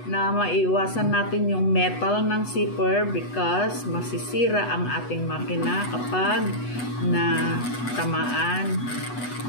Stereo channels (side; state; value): right; late; 8.1 ms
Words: na maiwasan natin yung metal ng zipper because masisira ang ating makina kapag na tamaan